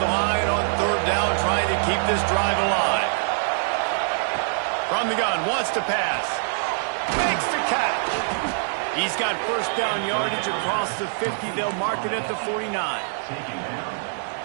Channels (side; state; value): left; silent; 63 dB below the other